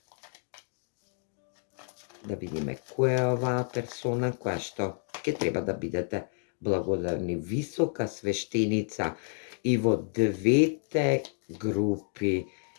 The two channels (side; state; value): right; silent; 58 dB below the other